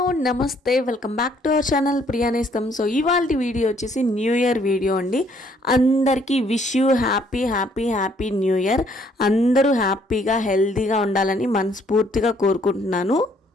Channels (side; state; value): both; normal; correlation 0.65